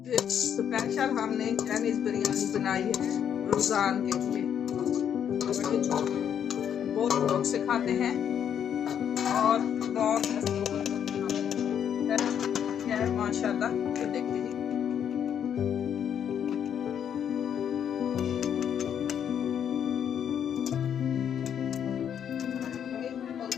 स्पेशल हमने चाइनीज बिरयानी बनाई है रमजान के लिए। बहुत लोग से खाते हैं और बहुत है माशाल्लाह। ये देखिए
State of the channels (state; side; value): quieter; right; 8.8 dB